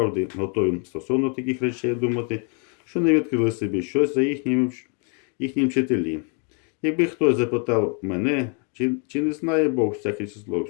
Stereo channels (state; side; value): quieter; right; 39.6 dB